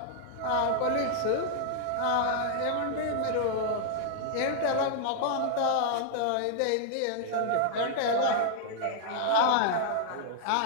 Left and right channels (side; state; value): both; different; correlation -0.01